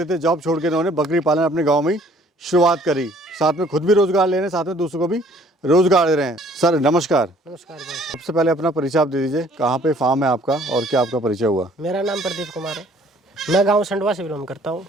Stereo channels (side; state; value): both; normal; correlation 0.58